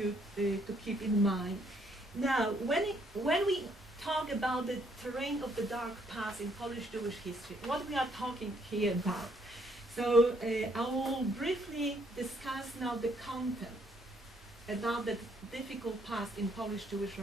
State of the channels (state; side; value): normal; both; correlation 0.69